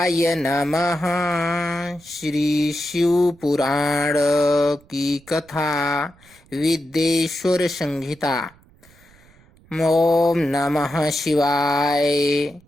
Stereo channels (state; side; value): noise; right; rumble, 28 dB below the sound